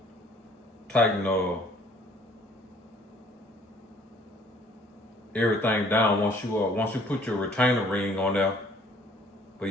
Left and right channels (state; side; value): normal; both; correlation 0.57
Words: everything down once you put your retainer ring on there. But